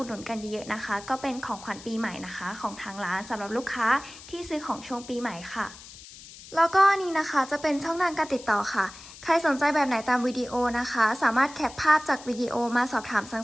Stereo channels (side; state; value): left; noise; hiss, 17 dB below the sound